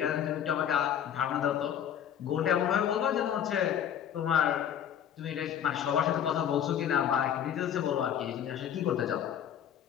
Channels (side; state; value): right; quieter; 9.4 dB